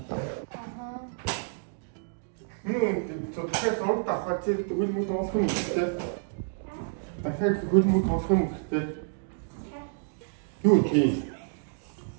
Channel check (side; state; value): left; silent; digital silence